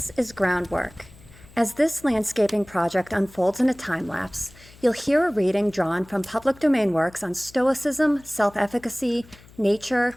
is Groundwork. As this landscaping project unfolds in a time-lapse, you'll hear a reading drawn from public domain works on stoicism, self-efficacy, nature,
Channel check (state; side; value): noise; left; hum, 23 dB below the sound